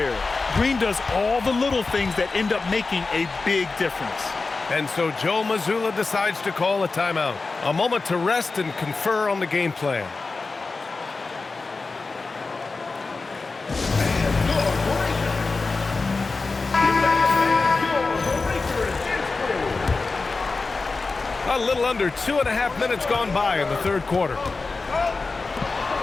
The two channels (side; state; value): right; quieter; 3.9 dB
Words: Green does all the little things that end up making a big difference. And so Joe Mazzulla decides to call a timeout. A moment to rest and confer on the game plan. A little under 2.5 minutes gone by in the third quarter.